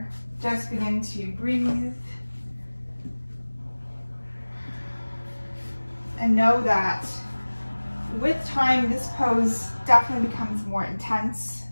just begin to breathe. And know that with time, this pose definitely becomes more intense.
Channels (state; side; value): inverted; both; correlation -1.00